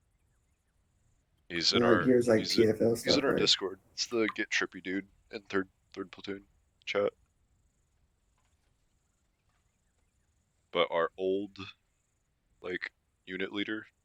He's in And, our here's, like, he's PFL in stuff, our right? Discord. It's the Get Trippy dude in third platoon chat. But our old like unit leader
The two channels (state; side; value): identical; both; correlation 1.00